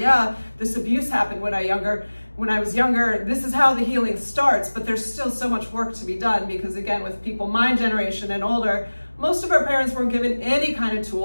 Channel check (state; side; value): inverted; both; correlation -1.00